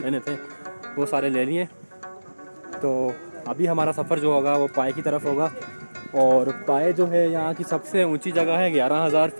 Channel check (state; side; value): inverted; both; correlation -1.00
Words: लेने थे वो सारे ले लिए। तो अभी हमारा सफ़र जो होगा वो पाए की तरफ होगा। और पाए जो है यहाँ की सबसे ऊंची जगह है, 11,000